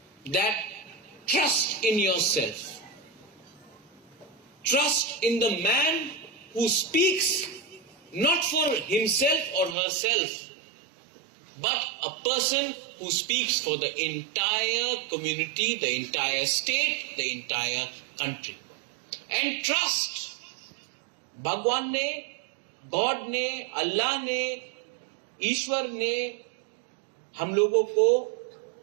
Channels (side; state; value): left; drops out; at 9.8 s